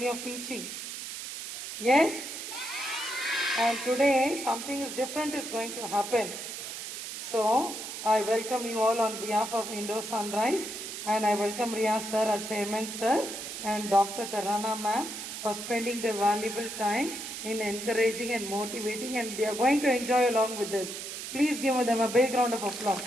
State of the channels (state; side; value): noise; right; hiss, 8 dB below the sound